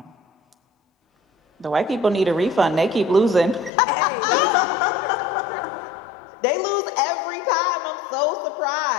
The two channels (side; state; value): right; drops out; at 3.7 s